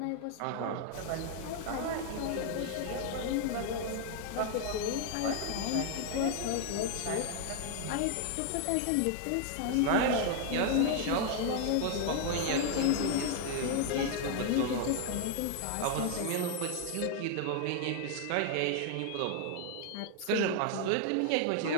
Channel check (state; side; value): different; both; correlation 0.00